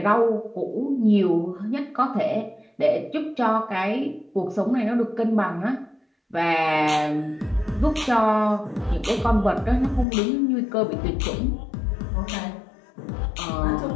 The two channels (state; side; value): drops out; right; at 10.1 s